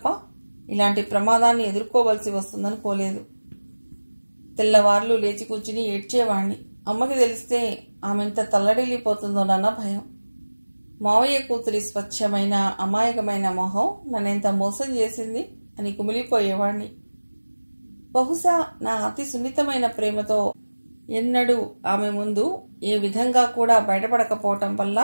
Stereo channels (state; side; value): inverted; both; correlation -1.00